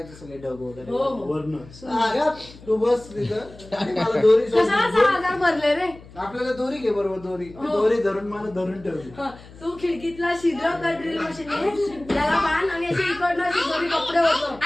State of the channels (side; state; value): left; noise; hum, 20 dB below the sound